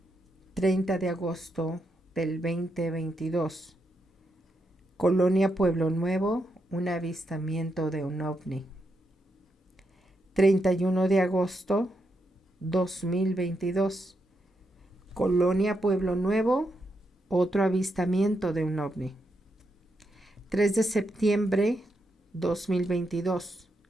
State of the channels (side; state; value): both; normal; correlation 0.82